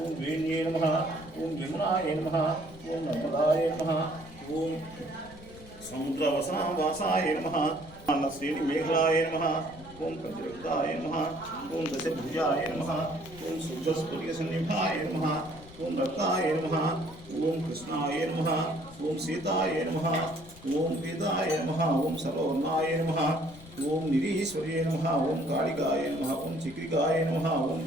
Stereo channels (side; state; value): left; noise; rumble, 19 dB below the sound